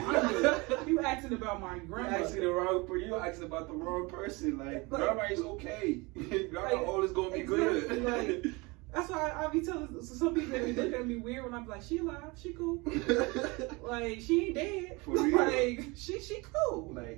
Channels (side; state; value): left; quieter; 25.6 dB